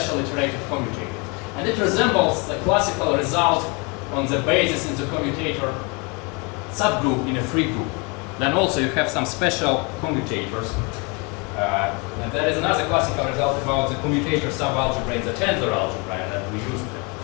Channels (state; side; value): quieter; right; 30.9 dB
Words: iterative commutator. And it resembles the classical result on the basis in the commutator subgroup in a free group. Then also you have some special commutators. And there is another classical result about the commutator subalgebra in the tensor algebra, and that we used it.